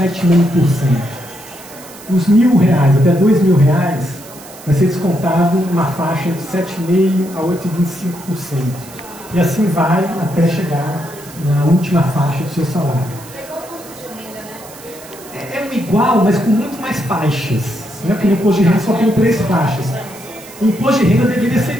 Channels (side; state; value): right; noise; hiss, 19 dB below the sound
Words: Os R$1.000 até R$2.000 vai ser descontado uma faixa de 7,5% a 8,25%. E assim vai até chegar na última faixa do seu salário. É igual, mas com muito mais faixas. Né? Porque no imposto de renda só tem 3 faixas. O imposto de renda deveria